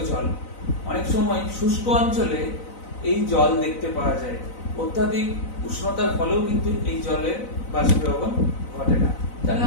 জল। অনেক সময় শুষ্ক অঞ্চলে এই জল দেখতে পাওয়া যায়। অত্যাধিক উষ্ণতার ফলেও কিন্তু এই জলের বাষ্পীভবন ঘটে না। তাহলে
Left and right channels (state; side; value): late; right; 4.0 ms